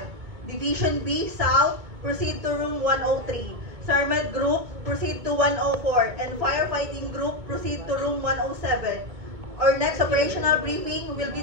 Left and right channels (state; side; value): late; left; 2.2 ms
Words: Division B South, proceed to room 103. SARMED Group, proceed to 104. And Firefighting Group, proceed to room 107. Our next operational briefing will be